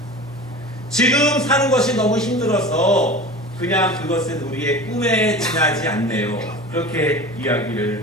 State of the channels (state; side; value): normal; both; correlation 0.35